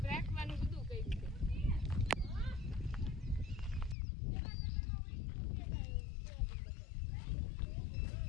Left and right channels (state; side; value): drops out; right; at 4.0 s